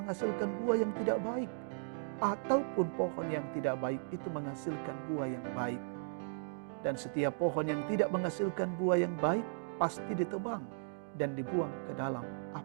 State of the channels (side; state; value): left; silent; digital silence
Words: buah yang tidak baik, ataupun pohon yang tidak baik itu menghasilkan buah yang baik. Dan setiap pohon yang tidak menghasilkan buah yang baik pasti ditebang dan dibuang ke dalam